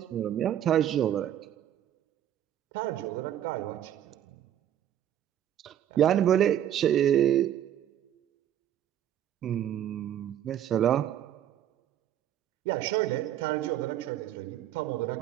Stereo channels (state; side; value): quieter; left; 11.1 dB